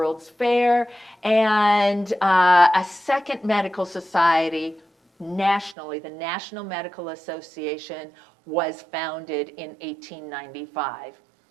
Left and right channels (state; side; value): drops out; left; at 5.8 s